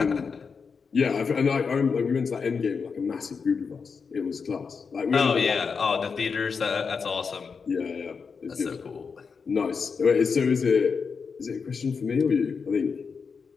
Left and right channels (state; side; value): quieter; right; 5.5 dB